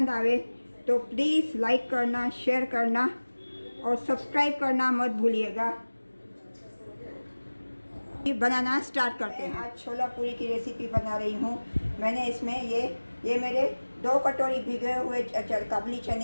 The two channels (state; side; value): inverted; both; correlation -1.00